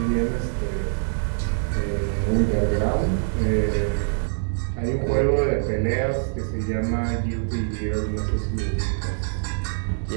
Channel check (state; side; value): silent; left; digital silence